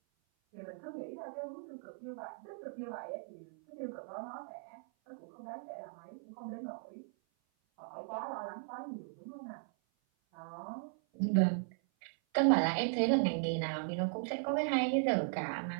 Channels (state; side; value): silent; left; 53 dB below the other